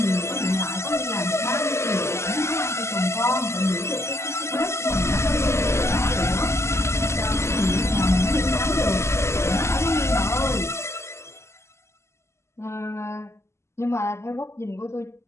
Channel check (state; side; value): late; right; 0.13 ms